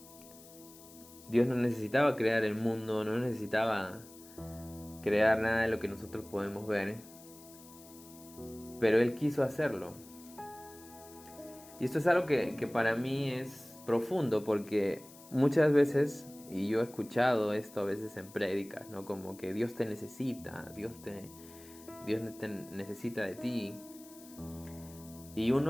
Dios no necesitaba crear el mundo, no necesitaba crear nada de lo que nosotros podemos ver. Pero Él quiso hacerlo. Y esto es algo que para mí es profundo, porque muchas veces, y yo he escuchado esto a veces en prédicas, ¿no?, como que Dios te necesita, Dios te necesita de ti. Y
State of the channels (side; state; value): left; noise; hiss, 20 dB below the sound